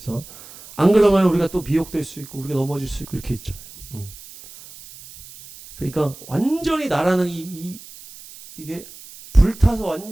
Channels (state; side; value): noise; right; hiss, 18 dB below the sound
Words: 안 그러면 우리가 또 미혹될 수 있고 우리가 넘어질 수 있고 이렇게 있잖아요. 그러니까 완전히 나라는 이게 불타서